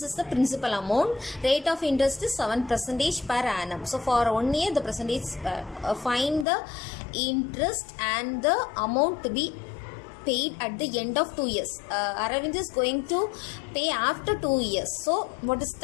is the principal amount. Rate of interest is 7% per annum. So for 1 year the percentage, find the interest and the amount to be paid at the end of 2 years. Aravind is going to pay after 2 years. So what is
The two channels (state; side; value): drops out; right; at 6.5 s